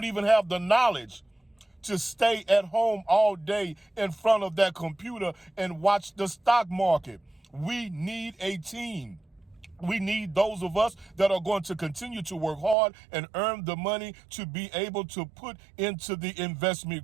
even have the knowledge to stay at home all day in front of that computer and watch the stock market. We need a team. We need those of us that are going to continue to work hard and earn the money to be able to put into the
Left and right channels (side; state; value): left; drops out; at 12.8 s